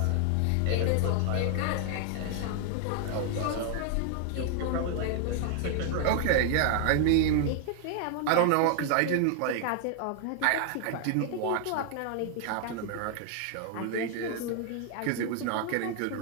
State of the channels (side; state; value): both; different; correlation 0.00